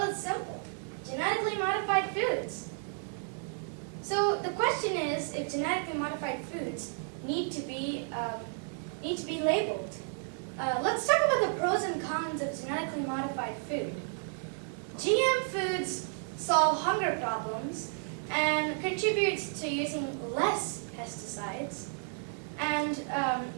it's simple. Genetically modified foods. So the question is if genetically modified foods need to be labeled. Let's talk about the pros and cons of genetically modified food. GM foods solve hunger problems and contributes to using less pesticides. And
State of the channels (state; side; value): silent; left; 56 dB below the other